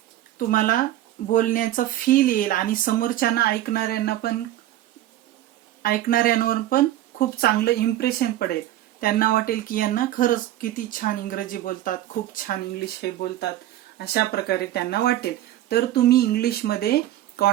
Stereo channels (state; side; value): quieter; left; 13.7 dB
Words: तुम्हाला बोलण्याचा फील येईल आणि समोरच्यांना ऐकणाऱ्यांवर पण खूप चांगलं इम्प्रेशन पडेल. त्यांना वाटेल की यांना खरंच किती छान इंग्रजी बोलतात, खूप छान इंग्लिश हे बोलतात, अशा प्रकारे त्यांना वाटेल. तर तुम्ही इंग्लिशमध्ये